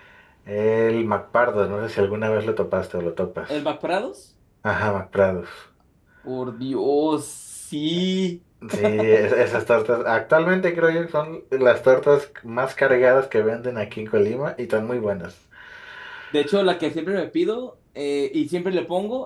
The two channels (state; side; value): identical; both; correlation 1.00